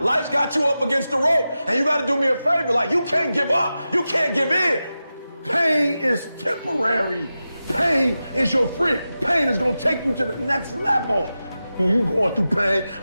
got you up against the rope, and you got to do me a favor. Like, you can't give up, you can't give in. Pain is temporary. Pain is your friend. Pain is going to take you to the next level. When you going through pain,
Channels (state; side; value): inverted; both; correlation -0.93